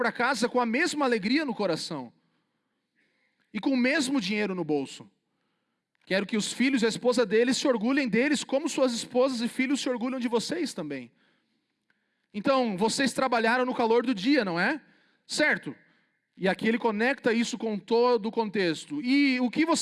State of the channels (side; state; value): both; identical; correlation 1.00